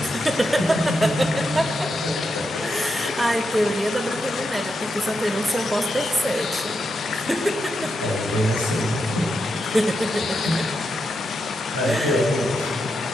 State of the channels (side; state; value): both; normal; correlation 0.85